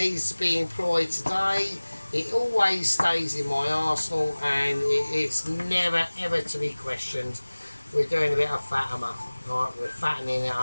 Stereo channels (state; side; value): inverted; both; correlation -1.00